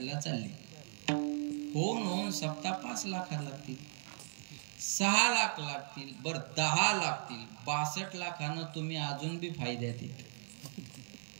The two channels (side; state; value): left; silent; digital silence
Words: चालले. होऊन सप्ताह 5 लाख लागतील, 6 लाख लागतील, बरं 10 लागतील. 62 लाखानं तुम्ही अजून बी फायद्यात येते.